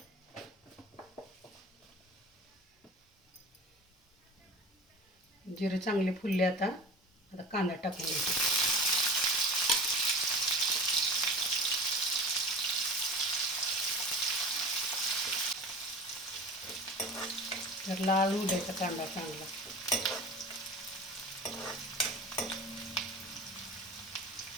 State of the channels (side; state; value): both; normal; correlation 0.35